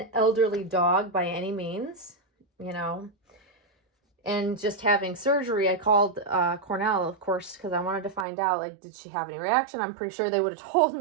elderly dog by any means, you know. And just having surgery, I called Cornell, of course, because I wanted to find out, like, did she have any reaction? I'm pretty sure they would have told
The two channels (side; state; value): left; drops out; at 8.2 s